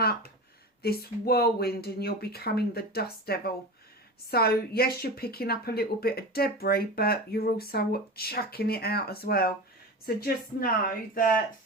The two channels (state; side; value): normal; both; correlation 0.28